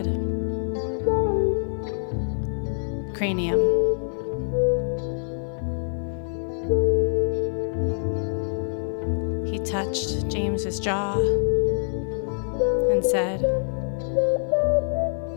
"Cranium." his jaw and said,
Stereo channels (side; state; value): right; silent; 62 dB below the other